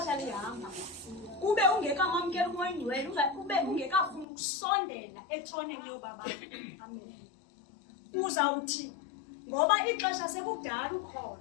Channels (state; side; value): drops out; right; at 4.2 s